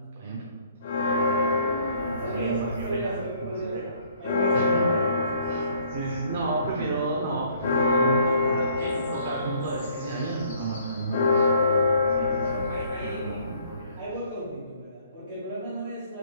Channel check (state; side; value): inverted; both; correlation -0.60